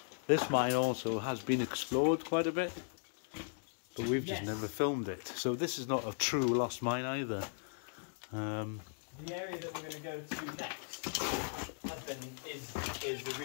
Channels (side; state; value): right; silent; digital silence